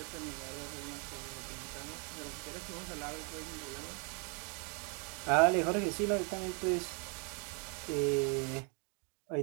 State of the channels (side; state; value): left; quieter; 36.8 dB